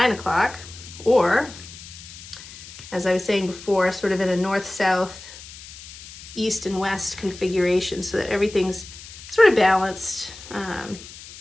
o'clock. Or, as I was saying before, sort of in a north-south, east and west configuration so that everything's sort of balanced,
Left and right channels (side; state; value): left; noise; hiss, 16 dB below the sound